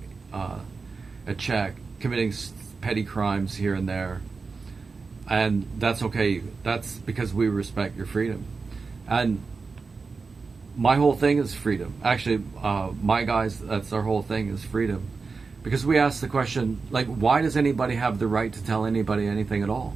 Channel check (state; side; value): quieter; left; 4.5 dB